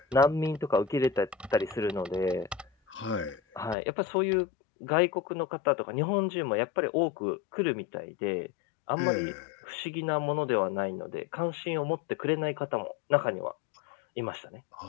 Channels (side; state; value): right; drops out; at 3.8 s